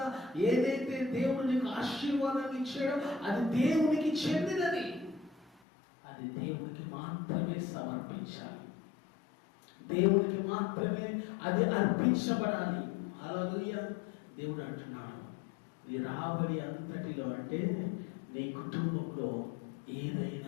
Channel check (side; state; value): right; drops out; at 5.6 s